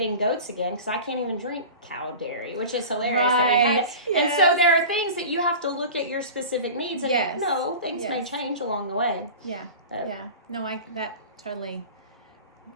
goats again because I can't even drink cow dairy, which is hilarious. Right. And so there are things that you have to look at your specific needs. And things may change along the way. Yeah. No, that totally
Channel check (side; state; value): both; inverted; correlation -0.35